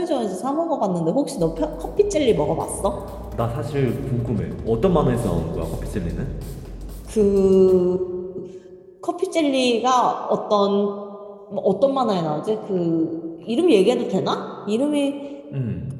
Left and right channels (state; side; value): identical; both; correlation 1.00